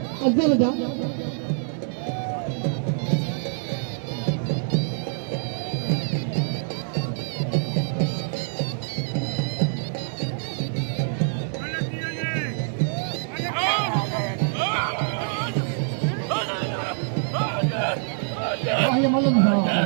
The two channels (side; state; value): left; silent; digital silence